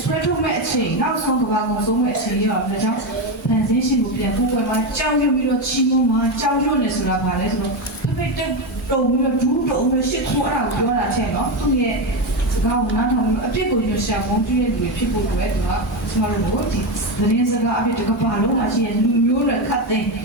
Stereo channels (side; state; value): both; normal; correlation 0.12